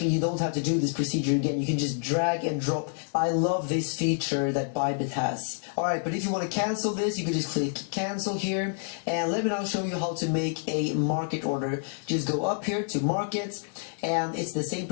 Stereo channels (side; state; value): right; silent; digital silence